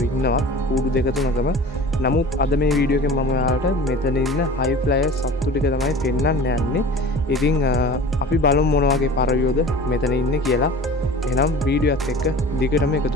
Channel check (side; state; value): both; normal; correlation 0.40